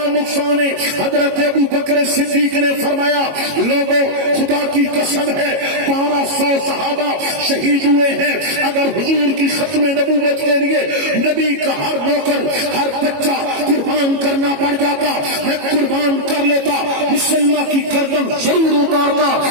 نقصان ہے۔ حضرت ابو بکر صدیق نے فرمایا لوگوں خدا کی قسم ہے 1200 صحابہ شہید ہوئے ہیں، اگر حضور کی ختم نبوت کے لیے نبی کا ہر نوکر ہر بچہ قربان کرنا پڑ جاتا میں قربان کر لیتا، مسلمہ کی گردن ضرور اتارتا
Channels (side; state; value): left; late; 22 ms